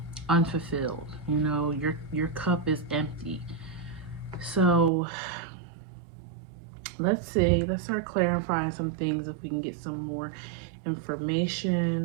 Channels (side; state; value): left; drops out; at 4.9 s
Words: unfulfilled. Your cup is empty. So let's see. Let's start clarifying some things if we can get some more